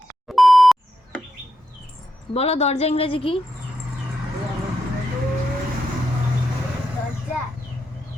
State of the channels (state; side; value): normal; both; correlation 0.84